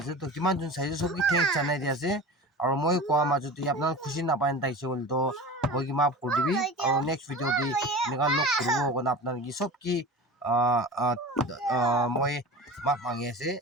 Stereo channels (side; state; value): both; normal; correlation 0.34